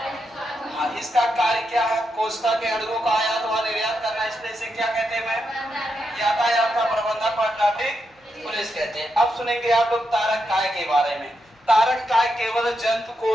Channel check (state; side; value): normal; both; correlation 0.84